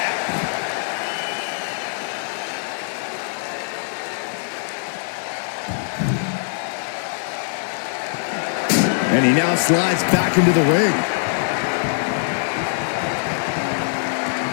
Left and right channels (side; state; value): right; silent; 64 dB below the other